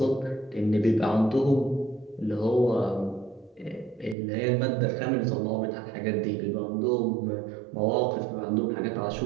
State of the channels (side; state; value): left; drops out; at 4.2 s